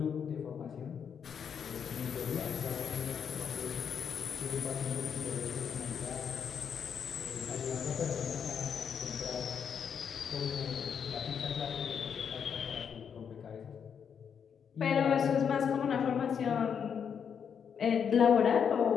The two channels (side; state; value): right; quieter; 7.3 dB